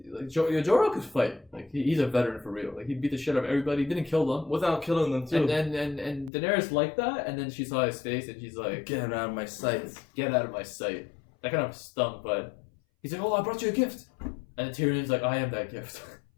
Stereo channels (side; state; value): right; drops out; at 6.3 s